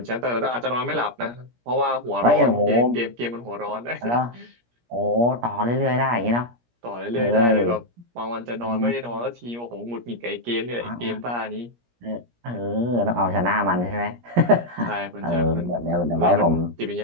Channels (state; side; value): late; left; 17 ms